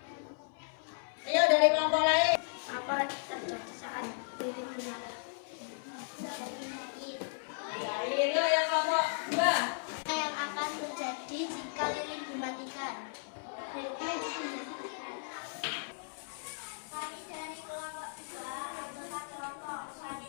Ayo dari kelompok lain. Apa terjadi saat lilin menyala? Dari yang kelompok 2. Apa yang akan terjadi jika lilin dimatikan? Kami dari kelompok 2 adalah kelompok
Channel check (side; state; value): right; silent; 54 dB below the other